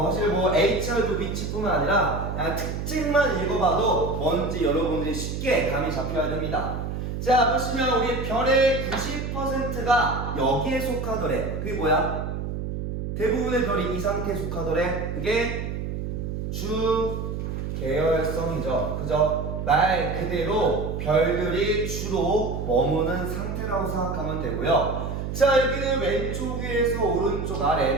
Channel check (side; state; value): right; noise; hum, 4 dB below the sound